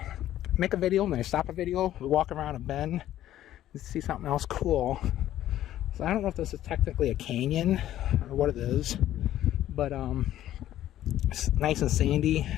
make a video and I stop a video, we walk around a bend and see something else cool. So I don't know if this is technically a canyon or what it is, but it's nice and sandy,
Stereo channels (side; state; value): right; quieter; 12.8 dB